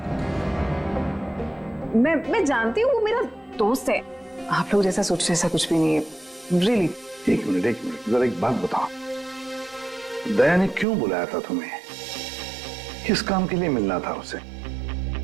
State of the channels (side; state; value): left; drops out; at 10.9 s